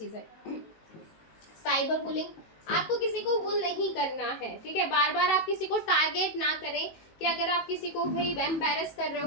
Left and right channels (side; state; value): right; late; 19 ms